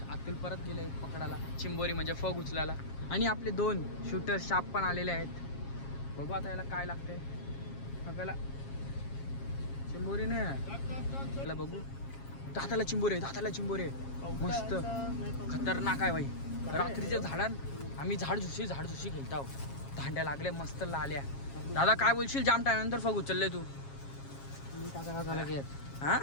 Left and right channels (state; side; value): late; right; 7.4 ms